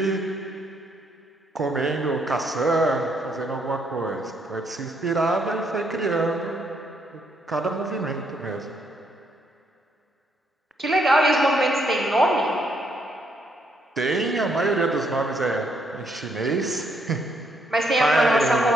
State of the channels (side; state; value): both; normal; correlation 0.73